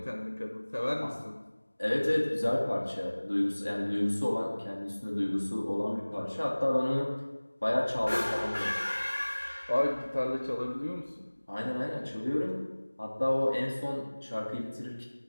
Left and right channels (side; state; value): both; inverted; correlation -1.00